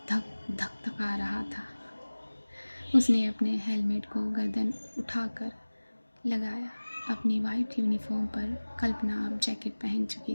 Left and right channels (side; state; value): both; inverted; correlation -1.00